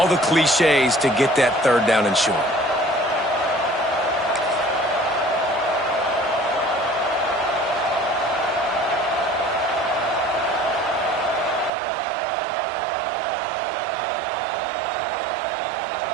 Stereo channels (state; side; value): drops out; left; at 11.7 s